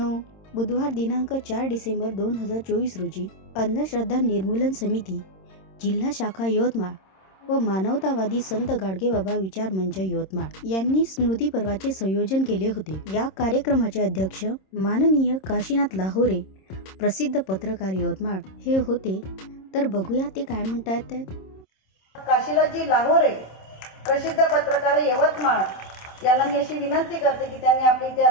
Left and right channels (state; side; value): late; right; 26 ms